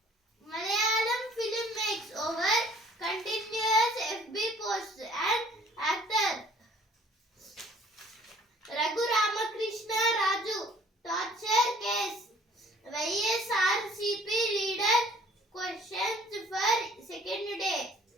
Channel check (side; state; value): both; normal; correlation 0.55